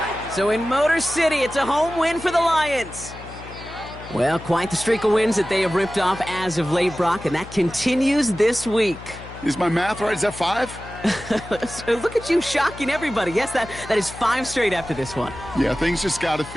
So in Motor City, it's a home win for the Lions. Well, quite the streak of wins that they have ripped off as of late, Brock, and that continues this week. Is my math right? Is that 5? Look at you shocking everybody. Yes, that is 5 straight after this one. Yeah, things just got to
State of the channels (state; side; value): noise; left; hum, 15 dB below the sound